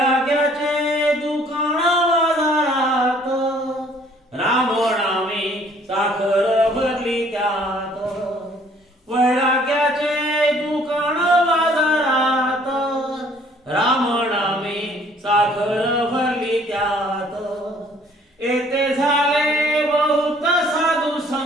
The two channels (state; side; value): normal; both; correlation 0.59